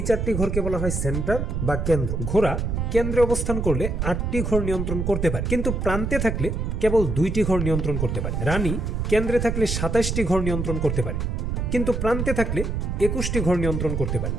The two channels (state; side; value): noise; right; rumble, 1 dB below the sound